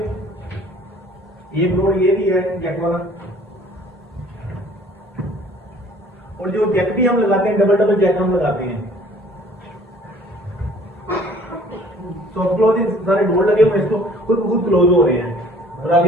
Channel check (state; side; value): normal; both; correlation 0.53